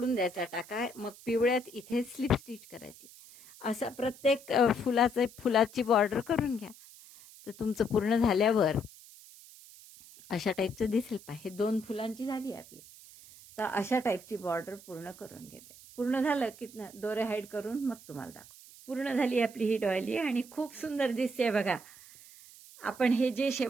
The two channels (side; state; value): right; noise; hiss, 20 dB below the sound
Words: द्यायचा टाका. मग पिवळ्यात इथे स्लिप स्टिच करायची. असं प्रत्येक फुलाची बॉर्डर करून घ्या. तर तुमचं पूर्ण झाल्यावर अशा टाईपचं दिसेल. हे 2 फुलांची झाली आपली. तर अशा टाईपची बॉर्डर पूर्ण करून घेते. पूर्ण झालं की दोरे हाईड करून मग तुम्हाला दाखव. पूर्ण झाली आपली ही डॉयली आणि खूप सुंदर दिसते बघा. आपण हे जे